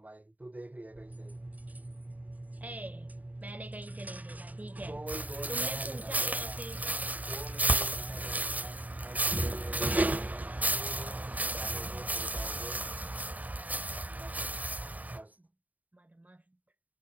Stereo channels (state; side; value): late; left; 0.076 ms